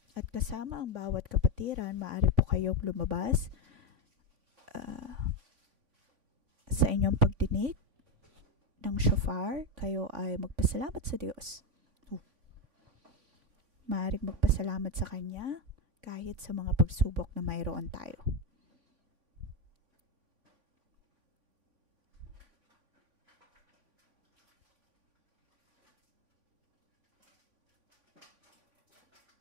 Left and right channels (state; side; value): late; left; 3.5 ms